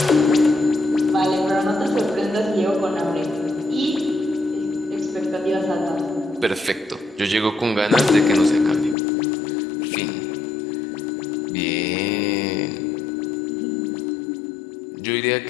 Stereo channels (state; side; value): drops out; right; at 9.0 s